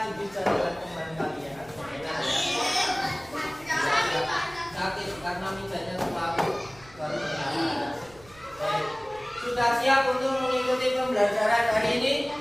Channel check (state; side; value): noise; right; rumble, 24 dB below the sound